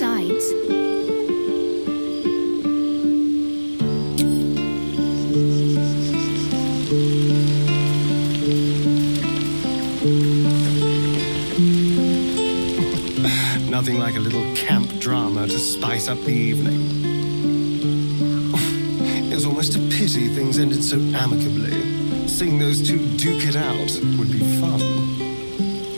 Nothing like a little camp drama to spice up the evening. It's almost a pity things ended so amicably. Seeing those two duke it out would be fun.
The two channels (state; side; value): inverted; both; correlation -1.00